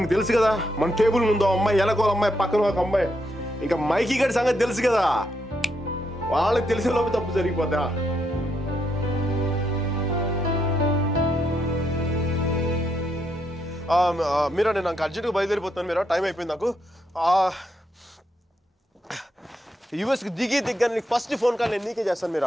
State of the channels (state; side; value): normal; both; correlation 0.78